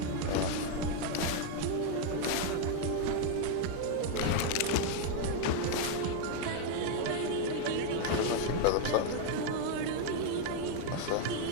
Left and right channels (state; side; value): different; both; correlation 0.00